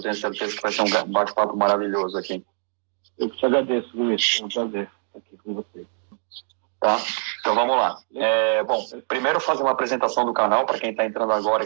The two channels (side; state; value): left; silent; 63 dB below the other